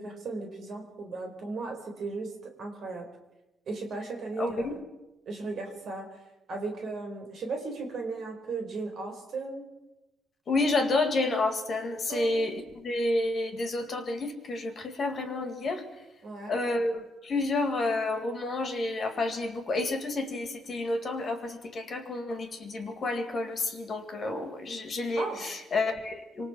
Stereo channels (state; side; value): normal; both; correlation 0.76